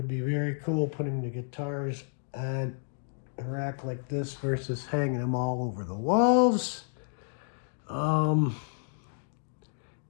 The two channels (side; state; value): right; silent; 57 dB below the other